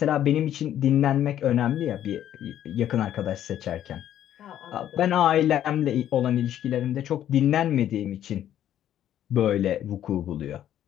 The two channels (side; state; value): right; quieter; 11.2 dB